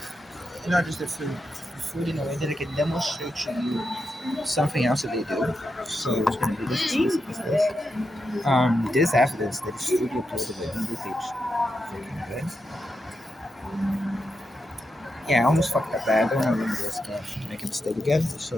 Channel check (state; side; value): normal; both; correlation 0.86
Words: Not just the food. The food in a way that I can demonstrate to you something else that they do. So it's gonna be this. This evidence that is studio uploaded in the page. Freaking good. Yeah, I almost fucked up that. I don't want to remember this game to make a mistake again. So